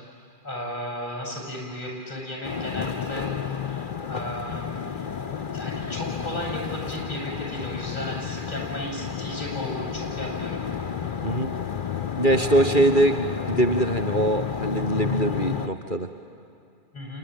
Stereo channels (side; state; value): right; late; 2.4 ms